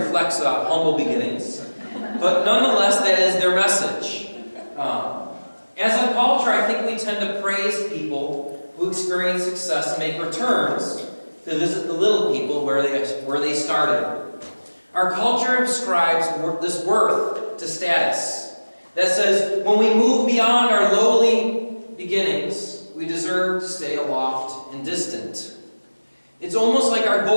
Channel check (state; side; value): inverted; both; correlation -1.00